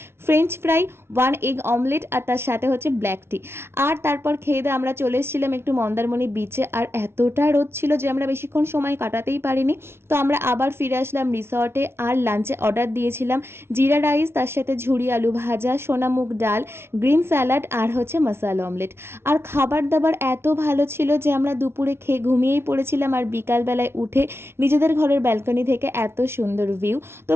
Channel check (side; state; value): left; late; 0.12 ms